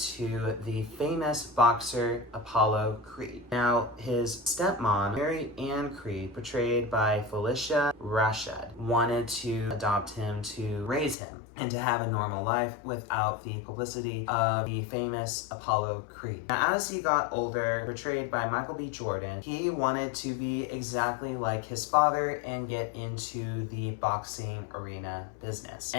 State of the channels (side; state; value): right; drops out; at 11.2 s